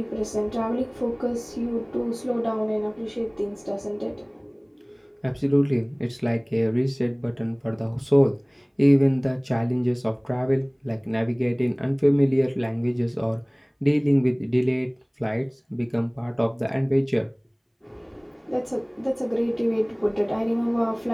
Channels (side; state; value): both; identical; correlation 1.00